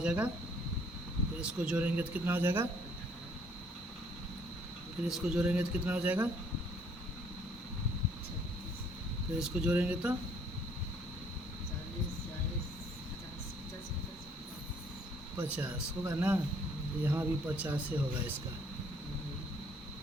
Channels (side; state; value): both; normal; correlation 0.62